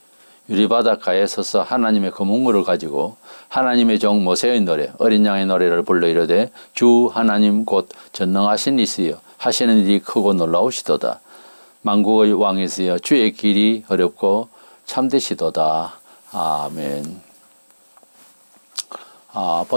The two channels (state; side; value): inverted; both; correlation -1.00